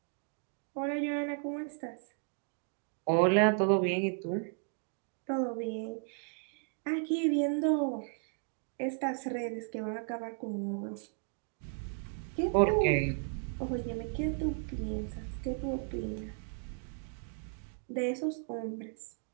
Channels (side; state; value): left; silent; 55 dB below the other